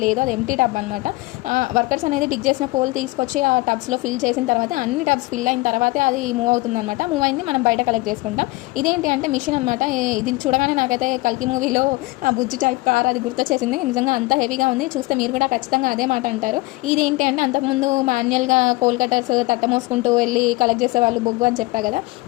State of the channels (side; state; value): right; quieter; 21.6 dB